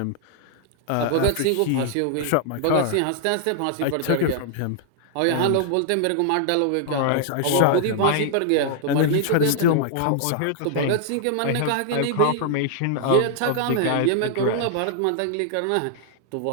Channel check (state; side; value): different; both; correlation -0.01